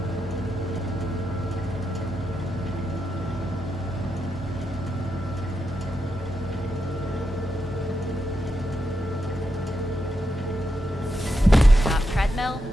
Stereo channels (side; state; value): both; normal; correlation 0.85